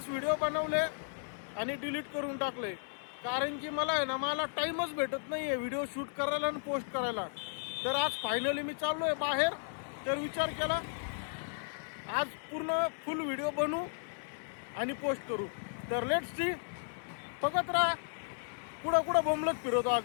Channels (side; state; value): right; silent; 55 dB below the other